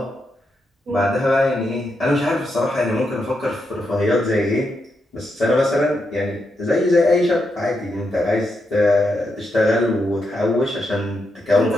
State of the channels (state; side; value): normal; both; correlation 0.83